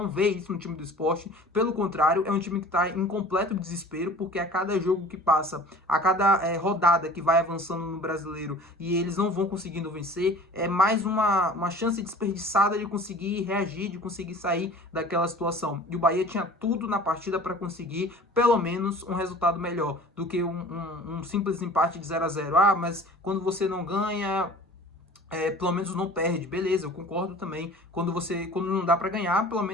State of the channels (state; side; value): normal; both; correlation 0.45